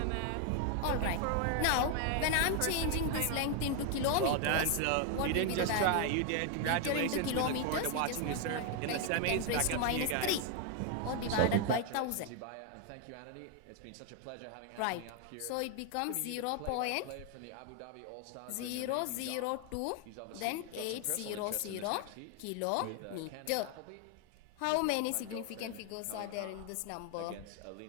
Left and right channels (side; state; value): both; different; correlation 0.01